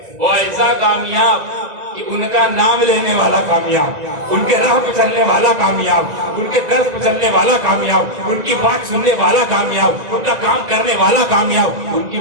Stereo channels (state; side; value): late; left; 2.0 ms